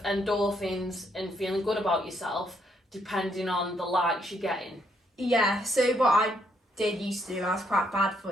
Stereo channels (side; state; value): both; normal; correlation 0.73